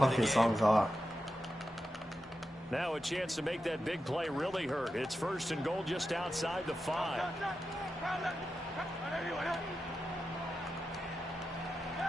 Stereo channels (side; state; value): both; normal; correlation 0.90